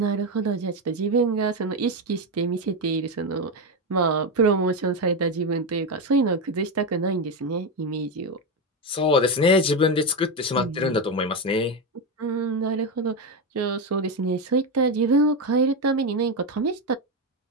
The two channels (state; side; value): normal; both; correlation 0.11